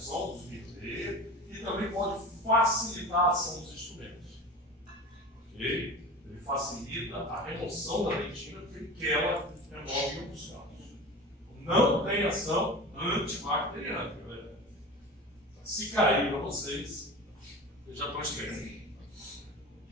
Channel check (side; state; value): both; normal; correlation 0.33